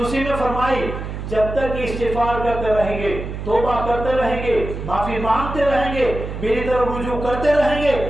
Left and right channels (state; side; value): noise; right; hum, 7 dB below the sound